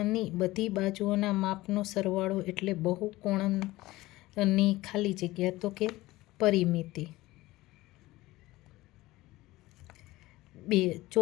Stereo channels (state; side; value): quieter; right; 18.5 dB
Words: બધી બાજુઓના માપનો સરવાળો એટલે બહુકોણની ખાલી જગ્યા, તો કે પરિમિતિ। 2,